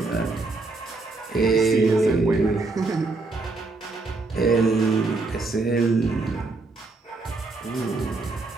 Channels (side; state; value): left; quieter; 3.6 dB